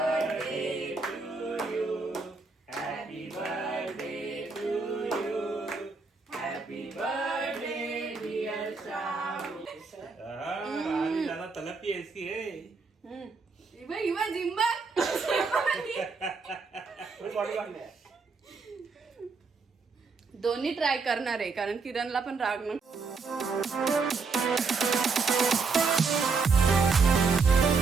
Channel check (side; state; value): left; quieter; 4.6 dB